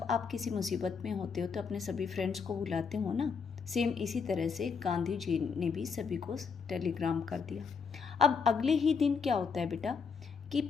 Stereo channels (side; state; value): right; quieter; 5.7 dB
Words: आप किसी मुसीबत में होते हो तो अपने सभी फ्रेंड्स को बुलाते हो ना, सेम इसी तरह से गांधी जी ने भी सभी को टेलीग्राम कर दिया। अब अगले ही दिन क्या होता है बेटा कि